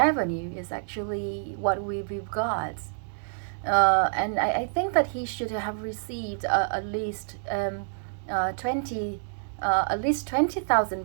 is actually what we've got. And I think that he should have received at least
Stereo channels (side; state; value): left; silent; digital silence